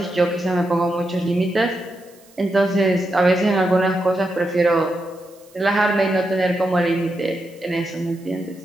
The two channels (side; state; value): right; noise; hiss, 28 dB below the sound